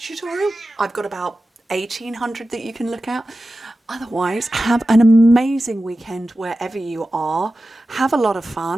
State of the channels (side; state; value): both; normal; correlation 0.94